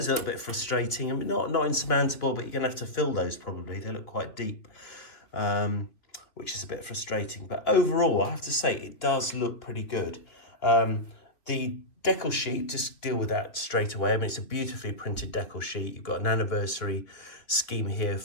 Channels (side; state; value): right; late; 2.8 ms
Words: are a little bit frustrating. I mean, not insurmountable, but you're going to have to fill those probably. They look quite deep, which is a bit frustrating. But overall, I have to say, it does look pretty good. The decal sheet, just deal with that straight away. I mean, it's a beautifully printed decal sheet. You've got an anniversary scheme here